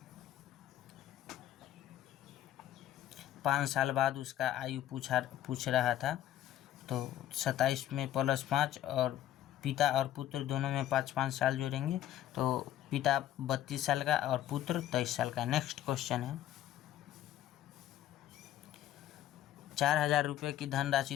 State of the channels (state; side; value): quieter; right; 12.5 dB